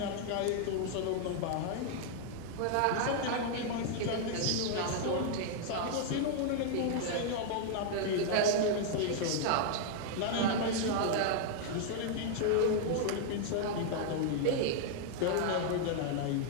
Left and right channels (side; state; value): both; different; correlation 0.00